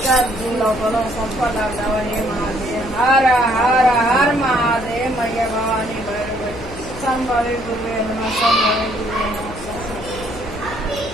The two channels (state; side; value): noise; left; hum, 13 dB below the sound